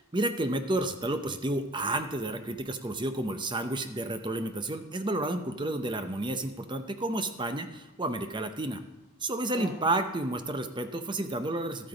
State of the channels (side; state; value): both; normal; correlation 0.46